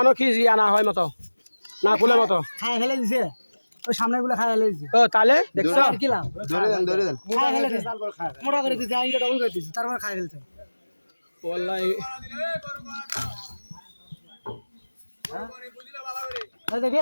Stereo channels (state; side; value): inverted; both; correlation -1.00